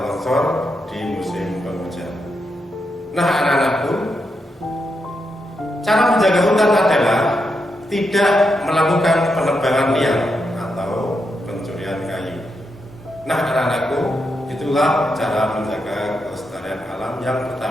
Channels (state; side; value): normal; both; correlation 0.84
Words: longsor di musim penghujan. Nah, anak-anakku, cara menjaga hutan adalah tidak melakukan penebangan liar atau pencurian kayu. Nah, anak-anakku, itulah cara menjaga kelestarian alam yang